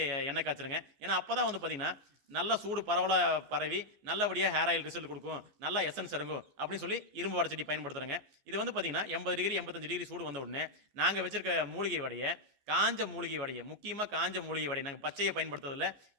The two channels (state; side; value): late; left; 14 ms